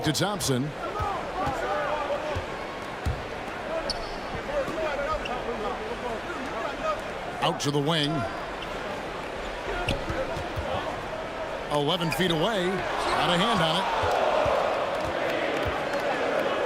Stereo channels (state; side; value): identical; both; correlation 1.00